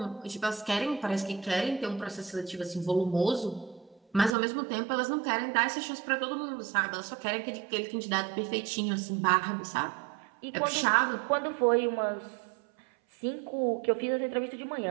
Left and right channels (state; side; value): drops out; left; at 4.4 s